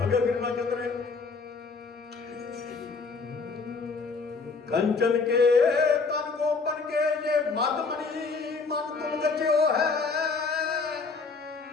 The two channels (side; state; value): right; quieter; 4.4 dB